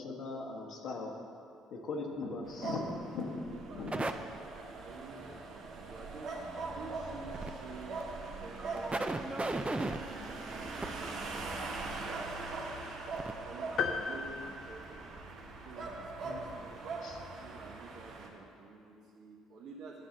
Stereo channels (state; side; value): normal; both; correlation 0.70